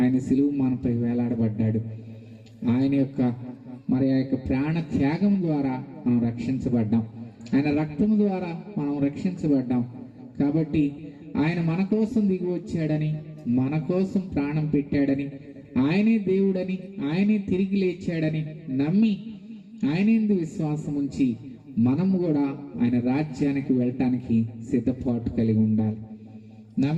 సిలువ మనపై వేలాడబడ్డాడు. ఆయన యొక్క ఆ యొక్క ప్రాణ త్యాగం ద్వారా మనం రక్షించబడ్డాం. ఆయన రక్తం ద్వారా మనం రక్షించబడ్డాం. కాబట్టి ఆయన మన కోసం దిగి వచ్చాడని, మన కోసం ప్రాణం పెట్టాడని, ఆయనే దేవుడని, ఆయనే తిరిగి లేచాడని నమ్మి ఆయనేందు విశ్వాసం ఉంచి మనము కూడా ఆయన రాజ్యానికి వెళ్ళటానికి సిద్ధపాటు కలిగి ఉండాలి.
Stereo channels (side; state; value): both; identical; correlation 1.00